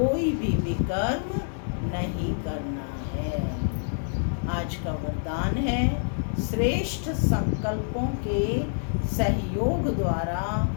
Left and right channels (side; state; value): right; silent; digital silence